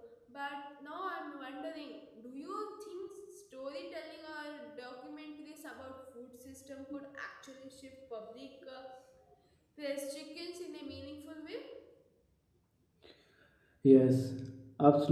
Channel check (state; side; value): identical; both; correlation 1.00